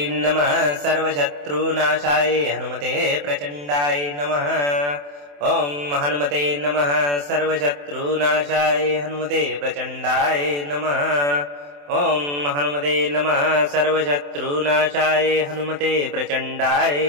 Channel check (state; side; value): late; left; 28 ms